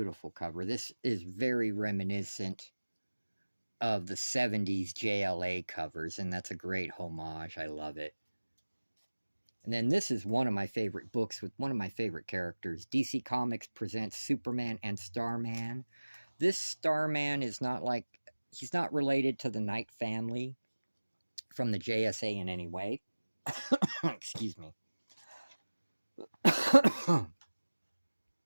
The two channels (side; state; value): both; inverted; correlation -1.00